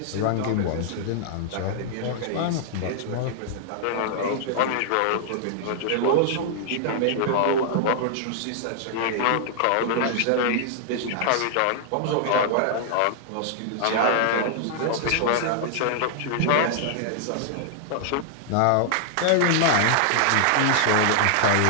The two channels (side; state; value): both; different; correlation -0.01